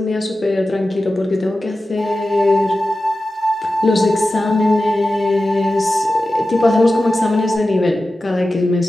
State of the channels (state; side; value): normal; both; correlation 0.94